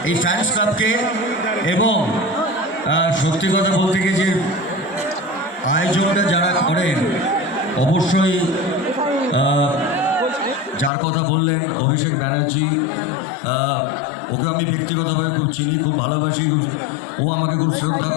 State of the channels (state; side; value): drops out; right; at 10.9 s